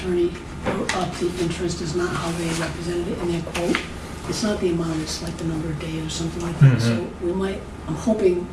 wrote up the interest is not how they represented it in their quote. It's not the amount, it's like the number of days or something like that. So we might, I'm hoping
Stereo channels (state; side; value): identical; both; correlation 1.00